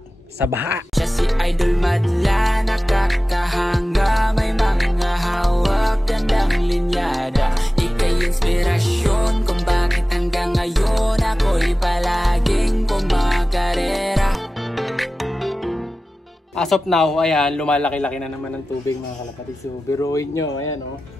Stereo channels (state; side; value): normal; both; correlation 0.95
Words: sa baha. Siya si Idol Madla, nakakahanga, may mga hawak, gandang linyada. Ika'y inspirasyon kung bakit hanggang ngayon ako'y palaging kumakarera. As of now, ayan, lumalaki-laki na naman ang tubig mga kalapatids. So, biruin nyo, ayan o.